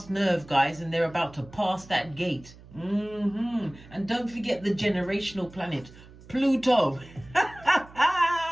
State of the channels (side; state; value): right; noise; hum, 21 dB below the sound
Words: nerve, guys, and they're about to pass that gate. And don't forget the generational planet, Pluto,